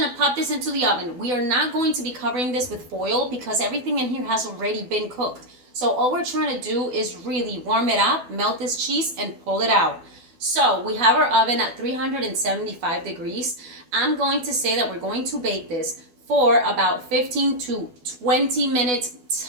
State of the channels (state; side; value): late; left; 12 ms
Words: to pop this into the oven. We are not going to be covering this with foil because everything in here has already been cooked. So all we're trying to do is really warm it up, melt this cheese, and pull it out. So we have our oven at 375 degrees. I'm going to say that we're going to bake this for about 15 to 20 minutes